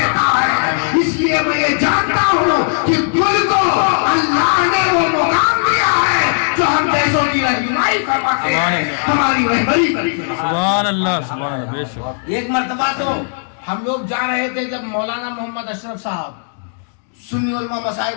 ہے. اس لیے میں یہ جانتا ہوں کہ گل کو اللہ نے وہ مقام دیا ہے جو ہم جیسوں کی رہنمائی فرماتے ہیں, ہماری رہبری کرتے ہیں. سبحان اللہ, سبحان اللہ, بے شک. ایک مرتبہ تو ہم لوگ جا رہے تھے جب مولانا محمد اشرف صاحب سنی علماء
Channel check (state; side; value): silent; right; digital silence